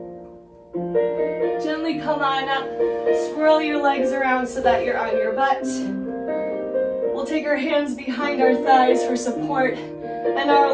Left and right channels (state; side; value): identical; both; correlation 1.00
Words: Gently come on up, swirl your legs around so that you're on your butt. We'll take our hands behind our thighs for support and